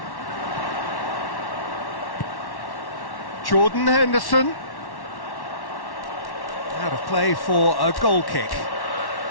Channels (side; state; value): right; late; 1.1 ms